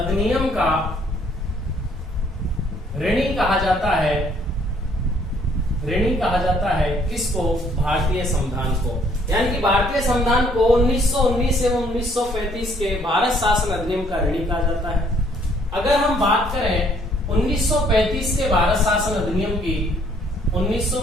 का ऋणी कहा जाता है, ऋणी कहा जाता है किसको? भारतीय संविधान को। यानी कि भारतीय संविधान को 1919 एवं 1935 के भारत शासन अधिनियम का ऋणी कहा जाता है। अगर हम बात करें 1935 के भारत शासन अधिनियम की,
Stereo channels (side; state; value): both; normal; correlation 0.64